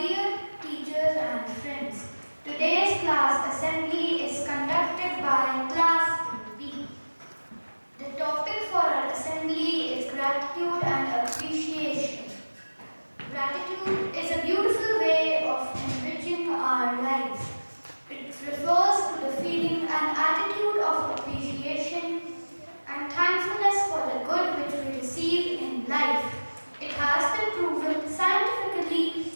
teachers and friends. Today's class assembly is conducted by Class B. The topic for our assembly is gratitude and appreciation. Gratitude is a beautiful way of enriching our lives. It refers to the feeling and attitude of appreciation and thankfulness for the good which we receive in life. It has been proven scientifically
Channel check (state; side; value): inverted; both; correlation -1.00